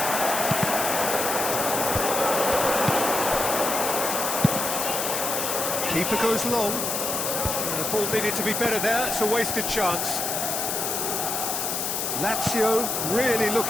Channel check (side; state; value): left; noise; hiss, 1 dB below the sound